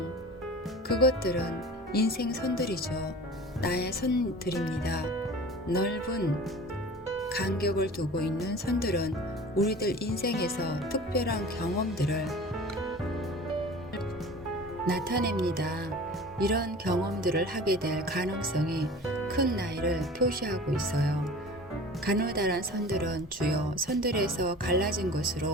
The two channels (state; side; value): normal; both; correlation 0.40